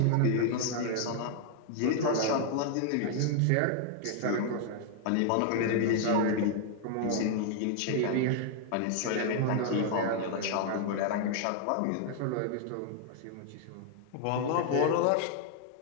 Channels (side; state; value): both; different; correlation 0.00